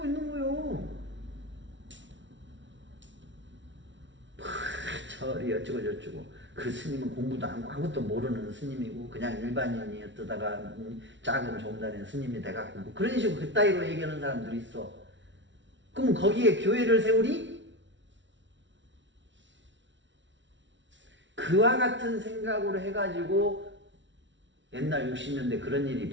있는 거요. 절이 어쩌고 저쩌고. 그 스님은 공부도 안 하고 아무것도 모르는 스님이고 그냥 일반인이었다가 작은 종단의 스님이 돼갖고 그런 식으로 그따위로 얘기하는 사람들이 있어. 그럼 거기에 교회를 세우리? 그와 같은 생각으로 해가지고 옛날 60년대 그런 일이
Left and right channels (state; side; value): late; left; 0.54 ms